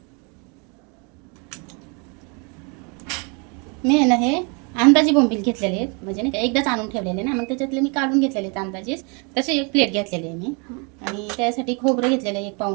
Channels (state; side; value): quieter; left; 33.2 dB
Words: मी आहे ना हे अंदाजी बोंबील घेतलेले आहेत, म्हणजे नाही का एकदाच आणून ठेवलेले ना, मग त्याच्यातले मी काढून घेतलेले आहेत अंदाजेच. तसे एक प्लेट घेतलेली आहे मी. आणि त्यासाठी खोबरं घेतलेलं आहे 1